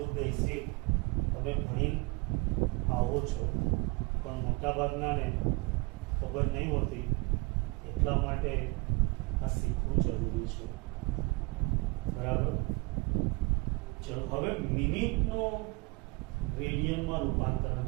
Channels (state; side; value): quieter; left; 27.1 dB